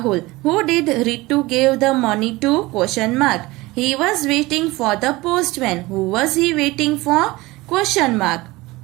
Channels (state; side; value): quieter; left; 20.7 dB